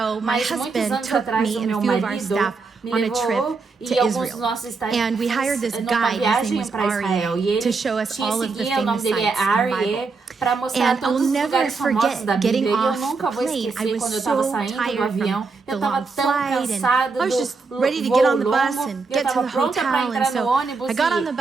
ago, my mas muitos husband anos took atrás me o and a meu few of our marido staff me on a levou trip e to alguns dos Israel. nossos staff And we hired this numa guide, his name viagem was para Israel e Aryeh, ele to show us tinha all of the seguia, o nome famous dele é sites in the Aryeh, Bible. para mostrar And I'll todos os never lugares famosos forget da getting Bíblia. E eu off nunca the vou plane. I esquecer was quando eu estava so saindo do tired avião. from Eu the estava long tão flight, cansada and I was do just ready to voo get on the longo. bus and Eu get to estava the pronta para hotel, entrar and so no ônibus I got on e the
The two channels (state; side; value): quieter; left; 4.4 dB